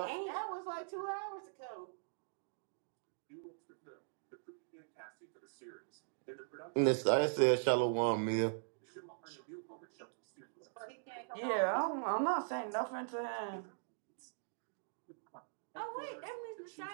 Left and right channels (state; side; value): silent; left; digital silence